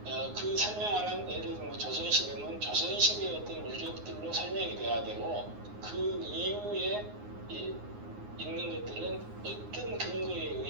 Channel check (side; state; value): left; late; 9.6 ms